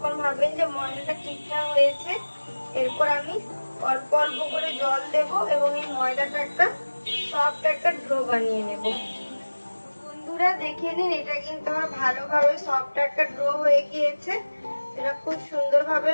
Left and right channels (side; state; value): both; inverted; correlation -1.00